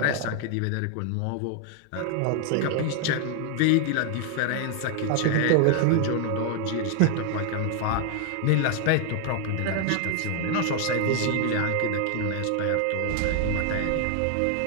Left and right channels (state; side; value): different; both; correlation 0.00